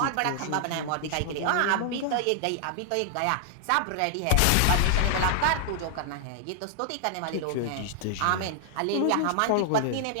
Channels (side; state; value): both; different; correlation 0.00